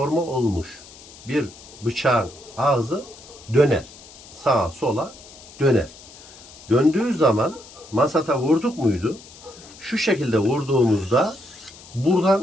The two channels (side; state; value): left; noise; hiss, 20 dB below the sound